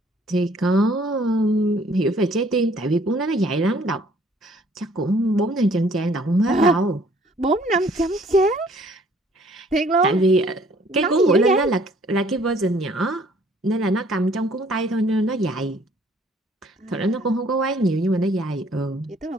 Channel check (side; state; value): both; normal; correlation 0.59